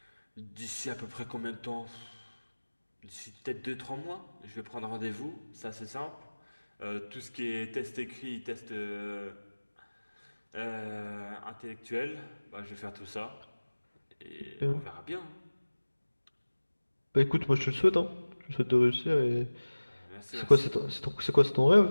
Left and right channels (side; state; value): both; inverted; correlation -1.00